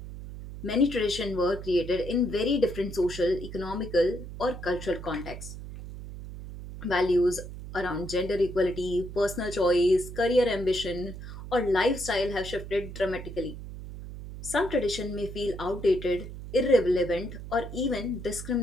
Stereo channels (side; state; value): right; noise; hum, 11 dB below the sound